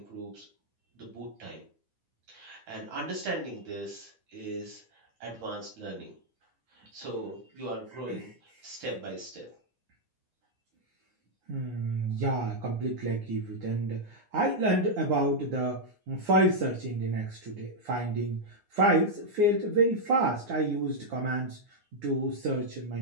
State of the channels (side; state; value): left; late; 9.6 ms